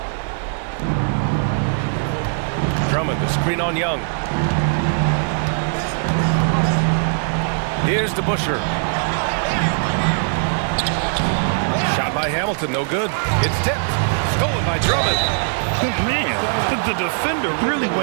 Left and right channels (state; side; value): silent; left; digital silence